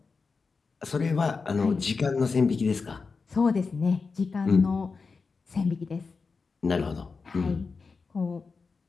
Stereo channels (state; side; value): quieter; right; 4.6 dB